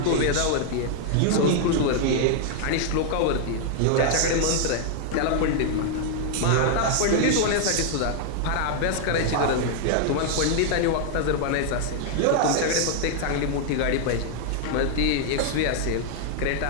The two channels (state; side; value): different; both; correlation -0.01